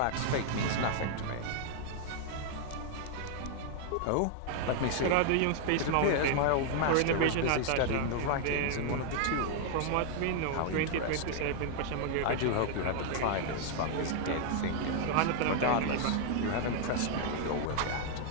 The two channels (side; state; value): both; different; correlation 0.00